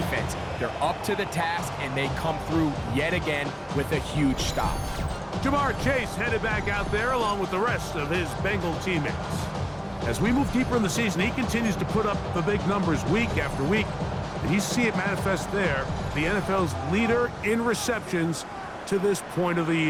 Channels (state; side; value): identical; both; correlation 1.00